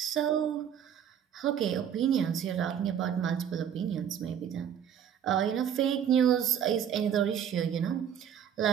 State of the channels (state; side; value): quieter; left; 8.9 dB